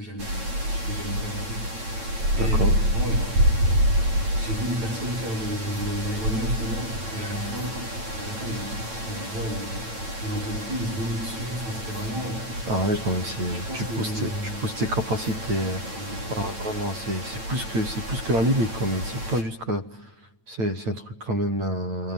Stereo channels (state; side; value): late; left; 9.0 ms